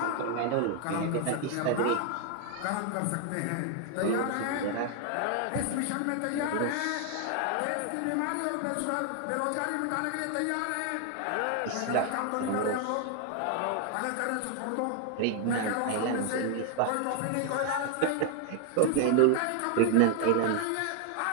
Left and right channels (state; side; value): different; both; correlation 0.01